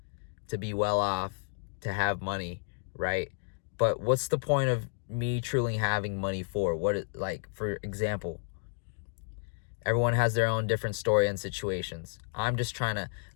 to be well off, to have money, right? But what's the point of me truly having money for? Like, for example, everyone has their own different story and situations. I'm just trying to,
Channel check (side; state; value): right; silent; 57 dB below the other